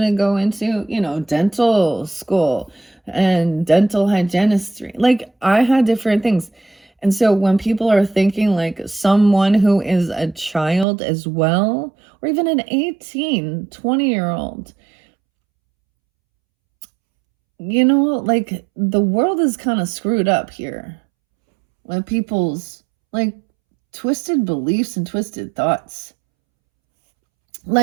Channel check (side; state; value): left; drops out; at 10.9 s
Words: to go into, dental school and dental hygienistry. I had different things. And so when people are thinking someone who is a child as well, or even an 18, 20-year-old, the world is kind of screwed up here with people's twisted beliefs and twisted thoughts.